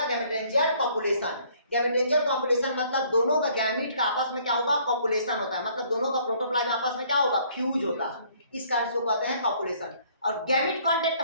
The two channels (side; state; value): both; inverted; correlation -0.61